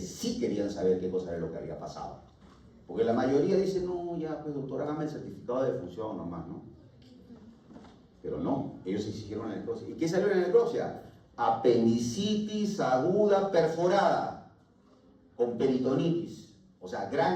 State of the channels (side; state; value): both; identical; correlation 1.00